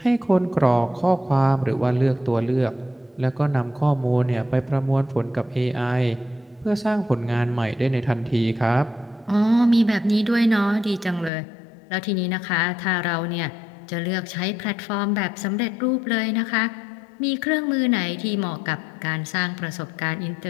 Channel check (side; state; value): right; drops out; at 11.3 s